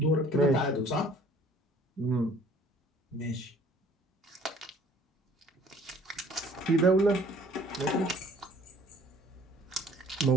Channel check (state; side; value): normal; both; correlation 0.54